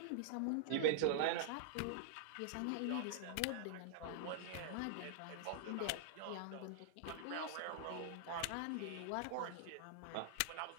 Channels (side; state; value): both; different; correlation -0.01